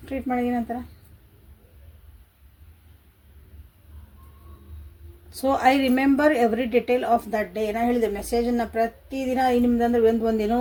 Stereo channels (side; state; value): both; identical; correlation 1.00